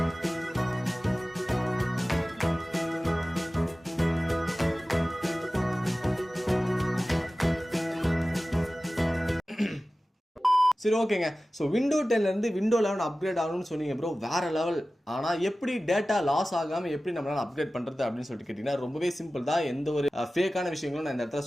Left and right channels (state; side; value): normal; both; correlation 0.96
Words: சரி ஓகேங்க. ஸோ விண்டோ 10ல இருந்து விண்டோ 11 அப்கிரேட் ஆகணும்னு சொன்னீங்க ப்ரோ, வேற லெவல். ஆனால் எப்படி டேட்டா லாஸ் ஆகாமல் எப்படி நம்மளால அப்கிரேட் பண்ணுறது அப்படின்னு சொல்லிட்டு கேட்டிங்கன்னா ரொம்பவே சிம்பிள் தான். எந்த ஒரு ஃபேக்கான விஷயங்களும் நான் இந்த இடத்துல